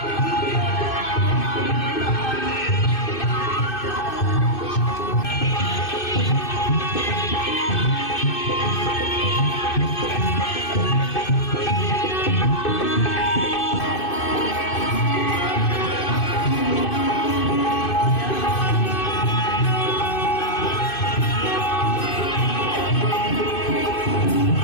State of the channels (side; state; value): right; late; 2.6 ms